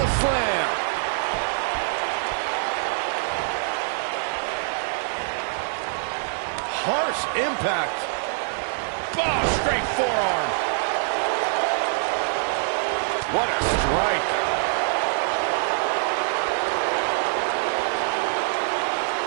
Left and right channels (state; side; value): silent; left; 62 dB below the other